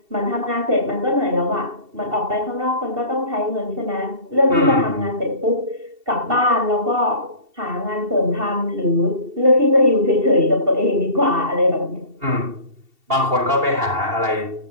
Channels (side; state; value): left; late; 2.7 ms